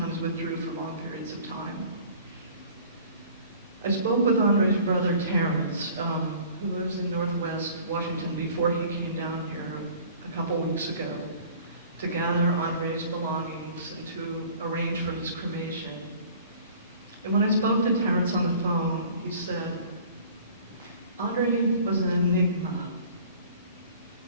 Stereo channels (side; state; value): both; inverted; correlation -0.49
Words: withdrew for long periods of time. I spoke with Andre's brother Terrence, who lives in Northwest Washington, before he came down here a couple weeks ago to gather Andre's belongings and to arrange for his cremation. And when I spoke to Terrence on the phone, he said, Andre was an enigma,